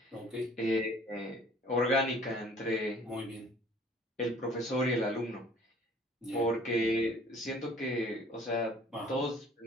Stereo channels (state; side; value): normal; both; correlation 0.54